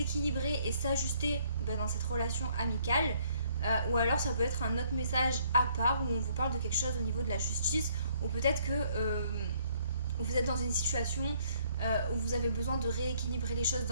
et s'ajuster dans cette relation amicale. Ou alors ça peut être un autre message à part où on vous parle de quelque chose au niveau de la justice. Ou peut-être que vous êtes dans une situation où vous avez besoin de rééquilibrer les choses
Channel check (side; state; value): both; inverted; correlation -0.64